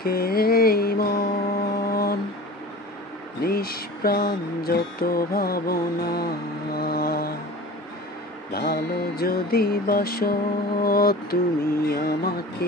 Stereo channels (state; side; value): normal; both; correlation 0.37